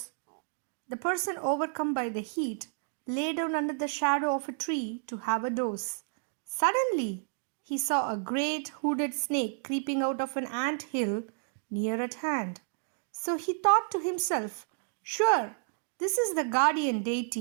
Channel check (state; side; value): silent; left; digital silence